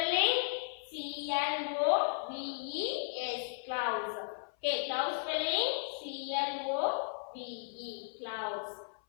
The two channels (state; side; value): silent; right; 54 dB below the other